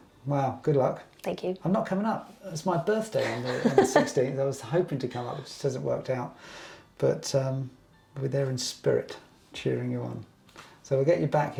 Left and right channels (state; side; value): identical; both; correlation 1.00